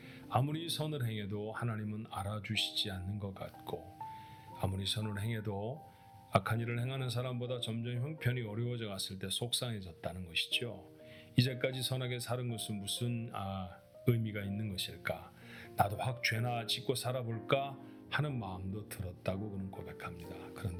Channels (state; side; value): identical; both; correlation 1.00